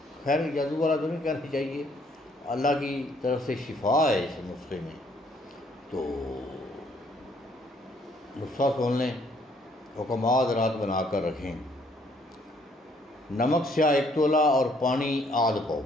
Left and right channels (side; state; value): both; normal; correlation 0.65